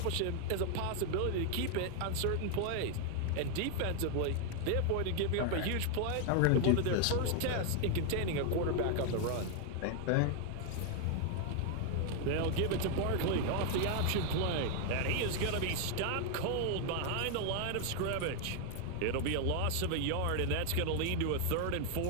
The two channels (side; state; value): both; different; correlation 0.00